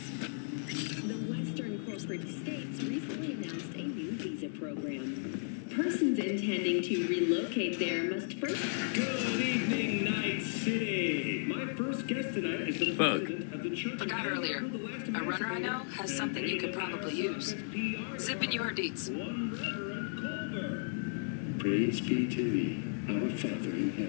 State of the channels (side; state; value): right; silent; digital silence